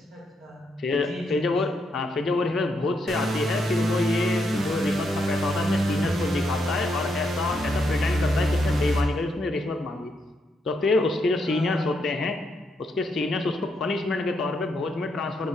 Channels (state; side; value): normal; both; correlation 0.79